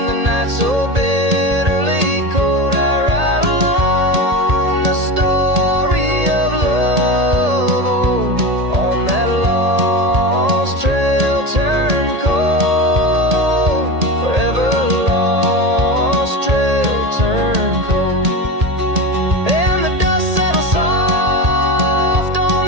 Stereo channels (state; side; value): late; left; 1.8 ms